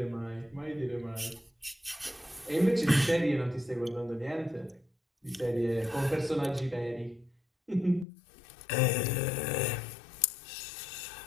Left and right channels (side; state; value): right; drops out; at 8.1 s